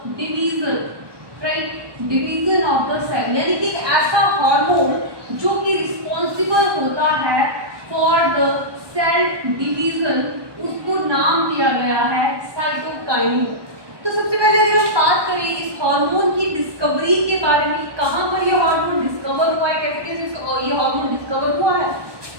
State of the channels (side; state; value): left; late; 1.2 ms